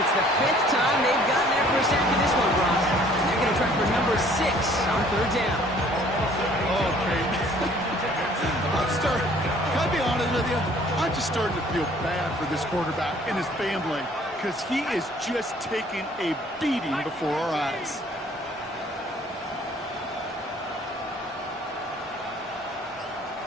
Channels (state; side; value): normal; both; correlation 0.57